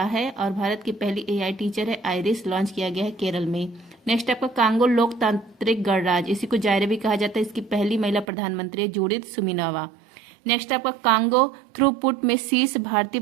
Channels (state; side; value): drops out; left; at 8.2 s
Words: है। और भारत की पहली AI टीचर है आइरिस, लॉन्च किया गया है केरल में। नेक्स्ट आपका कांगो लोकतांत्रिक गणराज्य, इसी को जायरे भी कहा जाता है, इसकी पहली महिला प्रधानमंत्री है जूडिथ सुमिनोवा। नेक्स्ट आपका कांगो थ्रूपुट में शीर्ष भारतीय